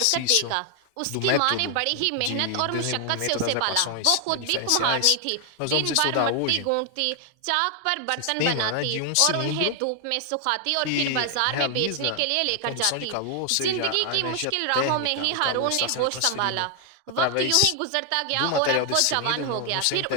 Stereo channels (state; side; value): different; both; correlation 0.00